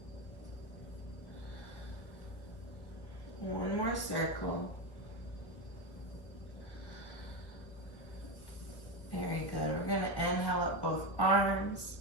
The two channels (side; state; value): right; late; 1.4 ms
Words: circle. Very good. We're going to inhale up both arms.